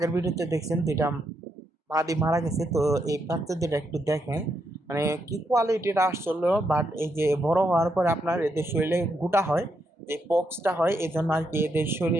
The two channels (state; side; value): normal; both; correlation 0.80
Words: ভিডিওতে দেখছেন দুইটা মাদি মারা গেছে। তো এই বাচ্চা দুটা একটু দেখেন, মানে কি কোয়ালিটির আসছিল। বাট এই যে বড় হওয়ার পরে আপনার এদের শরীরে গোটা হয়, যে পক্সটা হয়, এই জন্য আর কি এদের